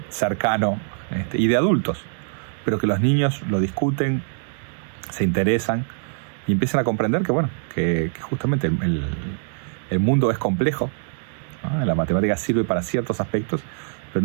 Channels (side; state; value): left; silent; digital silence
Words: cercano y de adultos, pero que los niños lo discuten, se interesan y empiezan a comprender que, bueno, que justamente el mundo es complejo, ¿no? La matemática sirve para ciertos aspectos,